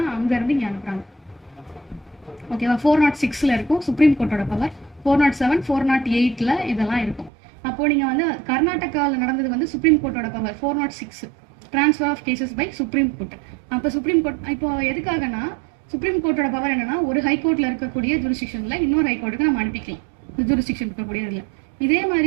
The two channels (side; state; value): left; drops out; at 7.3 s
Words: அங்க இருந்து இங்க அனுப்புறாங்க. ஓகேவா? 406ல இருக்கும் சுப்ரீம் கோர்ட்டோட பவர், 407 408ல இதெல்லாம் இருக்கும். அப்போ நீங்க வந்து கர்நாடகாவில் நடந்தது வந்து சுப்ரீம் கோர்ட்டோட power 406 transfer of cases by supreme court. அப்போ சுப்ரீம் கோர்ட் இப்போ எதுக்காகனா சுப்ரீம் கோர்ட்டோட பவர் என்னன்னா ஒரு ஹைகோர்ட்ல இருக்கக்கூடிய ஜூரிஸ்டிக்ஷன்ல இன்னொரு ஹைகோர்ட்டுக்கு நம்ம அனுப்பிக்கலாம், ஜூரிஸ்டிக்ஷன் இருக்கக்கூடிய இதுல. இதே மாதிரி